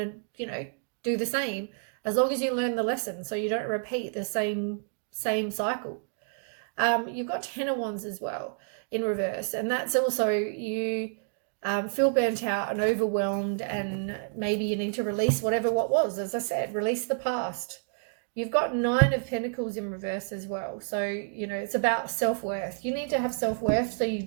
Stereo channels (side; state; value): left; silent; digital silence